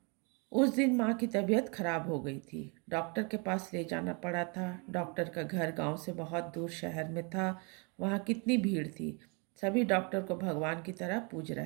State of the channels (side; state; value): left; quieter; 33.0 dB